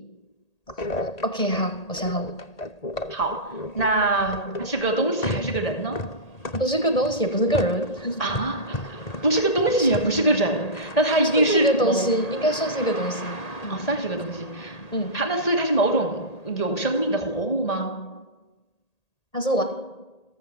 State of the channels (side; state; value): right; late; 1.8 ms